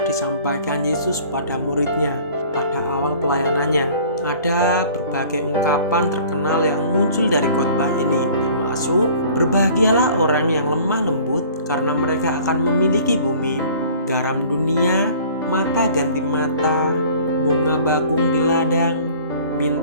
disampaikan Yesus pada muridnya pada awal pelayanannya. Ada berbagai ungkapan terkenal yang muncul dari khotbah ini, termasuk berbahagialah orang yang lemah lembut karena mereka akan memiliki bumi, garam dunia, mata ganti mata, bunga bakung di ladang,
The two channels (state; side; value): inverted; both; correlation -0.49